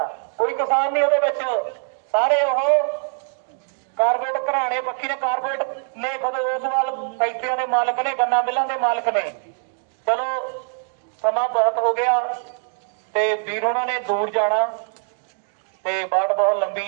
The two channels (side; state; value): left; silent; 57 dB below the other